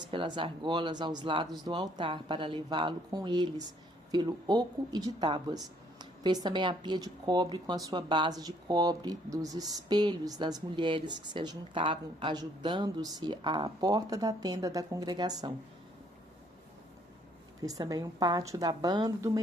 pelas argolas aos lados do altar para levá-lo com eles pelo oco e de tábuas. Fez também a pia de cobre com a sua base de cobre dos espelhos das mulheres que se ajuntavam, ajudando-se à porta da tenda da congregação. Fez também um pátio da banda do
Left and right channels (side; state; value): both; normal; correlation 0.65